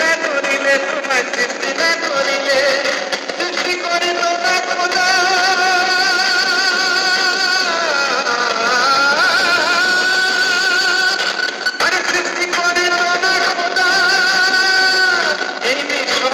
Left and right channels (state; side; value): identical; both; correlation 1.00